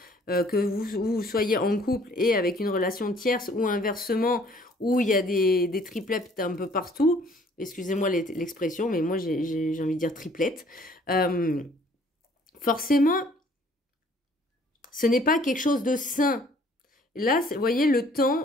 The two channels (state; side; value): normal; both; correlation 0.58